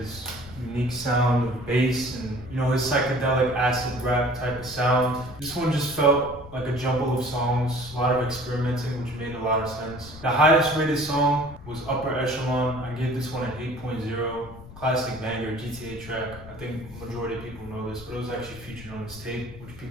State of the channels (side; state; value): left; noise; rumble, 16 dB below the sound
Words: his unique sound of bass and, you know, his psychedelic acid rap type of sound. This one just felt like a jumble of songs, a lot of experimenting, which made a lot of sense. The highest rated song was Upper Echelon. I gave this one an 8.0. Classic banger, GTA track. I think majority of people know this, but it was actually featured on this tape, which